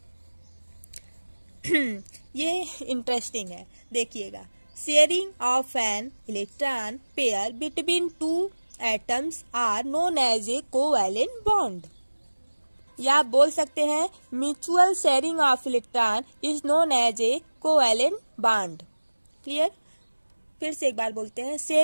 ये इंटरेस्टिंग है, देखिएगा। Sharing of an electron pair between 2 atoms are known as a covalent bond. या आप बोल सकते हैं mutual sharing of electron is known as a covalent bond. Clear? फिर से एक बार बोलते हैं।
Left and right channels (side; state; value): both; inverted; correlation -1.00